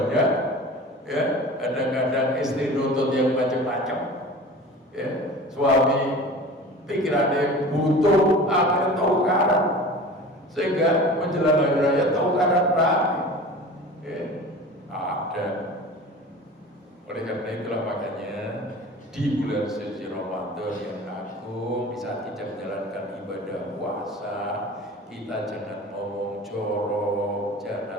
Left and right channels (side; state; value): both; normal; correlation 0.38